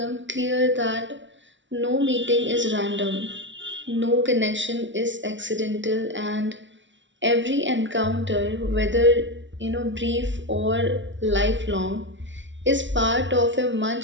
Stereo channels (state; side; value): late; left; 0.55 ms